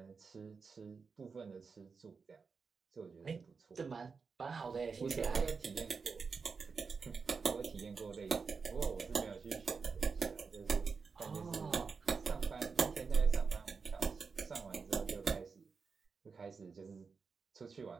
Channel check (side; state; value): left; quieter; 5.1 dB